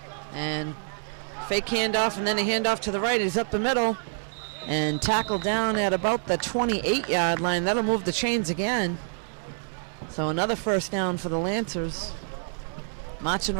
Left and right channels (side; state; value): left; silent; digital silence